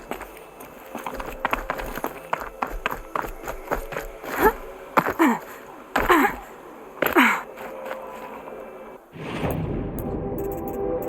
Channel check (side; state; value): both; identical; correlation 1.00